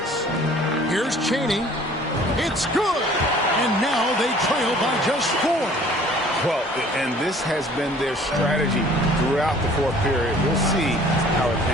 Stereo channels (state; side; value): normal; both; correlation 0.52